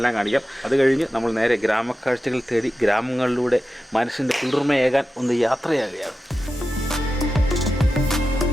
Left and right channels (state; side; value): normal; both; correlation 0.92